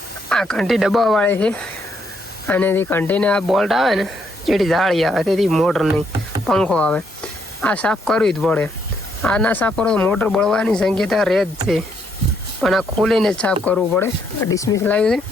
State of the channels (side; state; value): both; normal; correlation 0.73